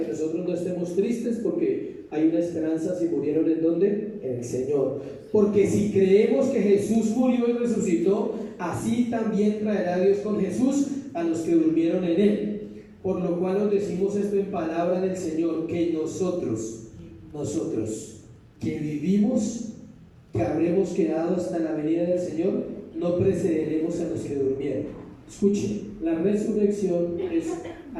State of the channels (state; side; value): identical; both; correlation 1.00